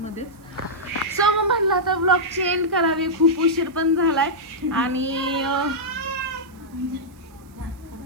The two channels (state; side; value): noise; right; hiss, 30 dB below the sound